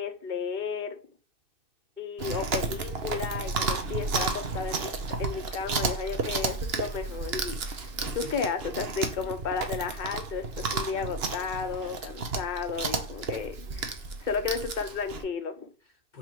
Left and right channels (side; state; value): left; late; 2.9 ms